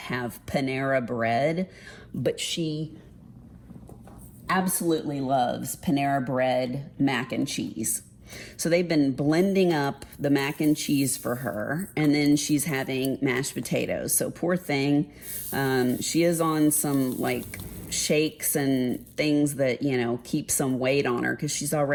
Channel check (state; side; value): identical; both; correlation 1.00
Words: Panera bread, but she absolutely loves Panera bread mac and cheese. So they've been blending up the mac and cheese for her, and then she's having mashed potatoes. So poor thing, she is on some like shakes and things that, you know, keep some weight on her because she's